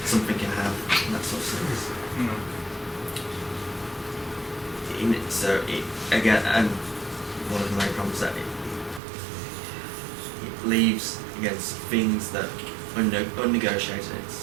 something can have in that sort of sense. Again, and one of the main problems that it leaves against things that are unnegotiated. It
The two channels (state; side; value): drops out; left; at 9.0 s